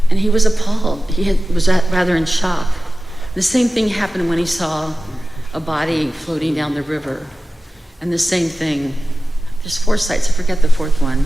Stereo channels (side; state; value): both; normal; correlation 0.96